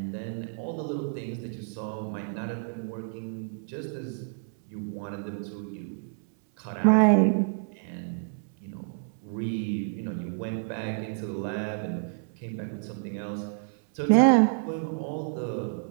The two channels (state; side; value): silent; left; 59 dB below the other